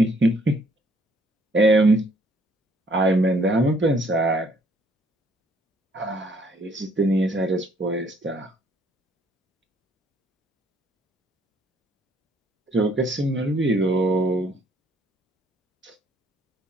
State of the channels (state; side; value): normal; both; correlation 0.65